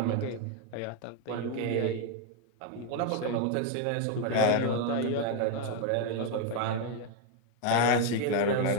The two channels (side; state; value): both; different; correlation 0.01